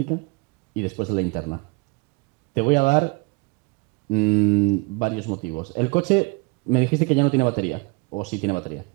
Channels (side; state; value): left; quieter; 28.9 dB